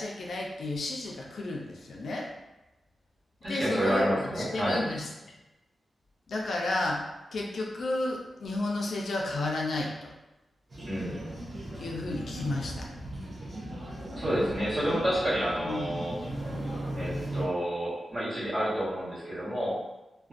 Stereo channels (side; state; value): both; normal; correlation 0.90